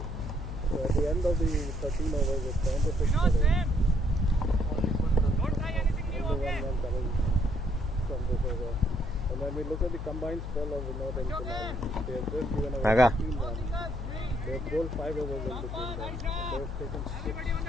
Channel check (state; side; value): noise; left; hum, 6 dB below the sound